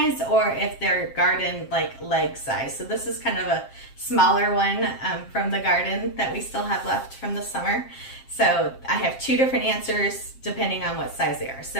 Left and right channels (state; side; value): late; right; 7.5 ms